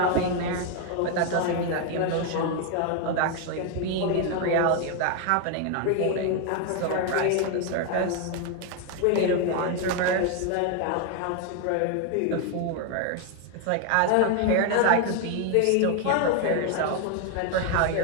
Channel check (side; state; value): both; different; correlation 0.01